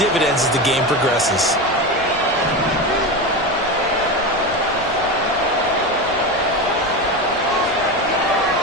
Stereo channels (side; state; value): both; normal; correlation 0.21